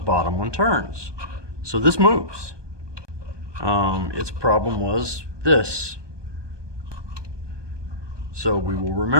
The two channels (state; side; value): late; left; 1.2 ms